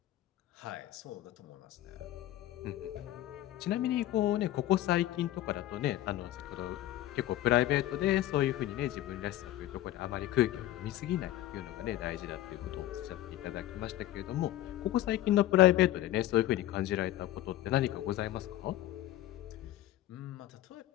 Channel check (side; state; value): right; quieter; 14.3 dB